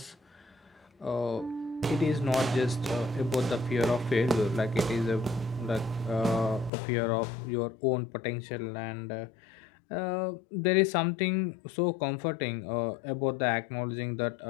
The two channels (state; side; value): drops out; right; at 6.7 s